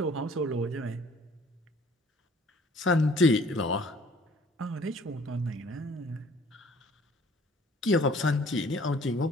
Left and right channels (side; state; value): both; normal; correlation 0.55